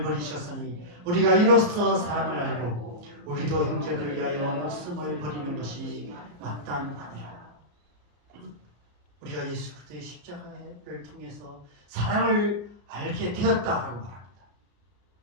버리셨으니 우리가 이로써 사랑을 알고 우리도 형제들을 위하여 목숨을 버리는 것이 마땅하니라. 우리가 예수 그리스도의 십자가를 통해서 사랑을 알게 되었다라고 말합니다.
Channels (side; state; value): left; late; 33 ms